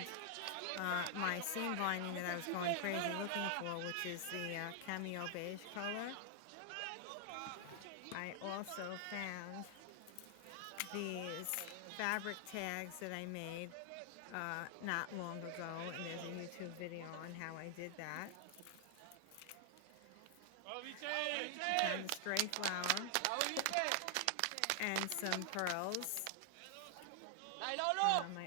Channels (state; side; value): different; both; correlation 0.00